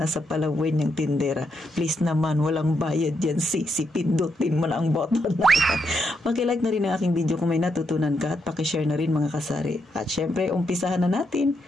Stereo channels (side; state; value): both; normal; correlation 0.80